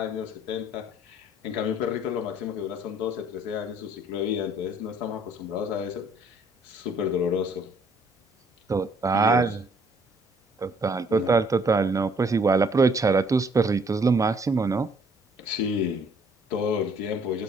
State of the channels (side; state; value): both; normal; correlation 0.62